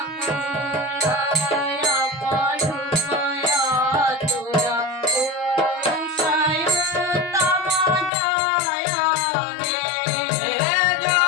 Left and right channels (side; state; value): right; drops out; at 8.1 s